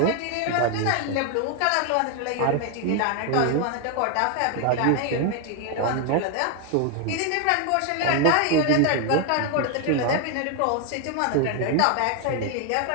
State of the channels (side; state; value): both; different; correlation 0.01